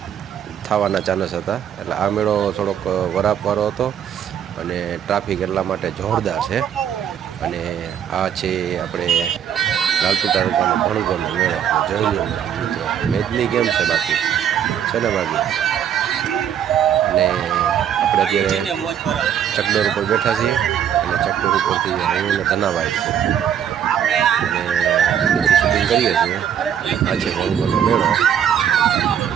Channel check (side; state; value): left; quieter; 9.2 dB